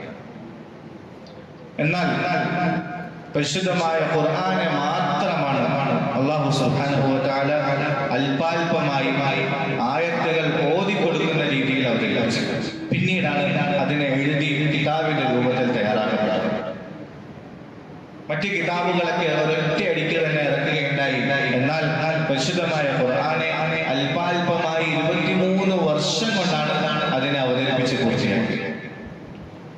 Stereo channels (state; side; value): identical; both; correlation 1.00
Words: എന്നാൽ പരിശുദ്ധമായ ഖുർആനെ മാത്രമാണ് അല്ലാഹു സുബ്ഹാനഹു വ തആല അല്പാൽപമായി ആയത്തുകൾ ഓതിക്കൊടുക്കുന്ന രീതിയിൽ അവതരിപ്പിച്ചു. പിന്നീടാണ് അതിനെ എഴുതി കിതാബിന്റെ രൂപത്തിൽ തയ്യാറാക്കപ്പെട്ടത്. മറ്റ് കിതാബുകളൊക്കെ ഒരൊറ്റ അടിക്ക് തന്നെ ഇറക്കുകയുണ്ടായി. എന്നാൽ പരിശുദ്ധമായ ഖുർആനെ അല്പാൽപമായി 23 വർഷം കൊണ്ടാണ് അതിനെ അവതരിപ്പിച്ച് പൂർത്തിയാക്കിയത്.